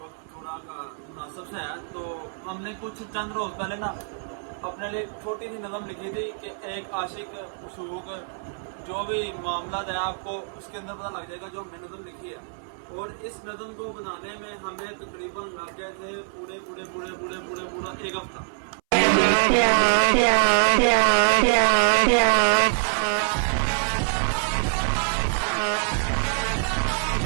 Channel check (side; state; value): left; silent; 61 dB below the other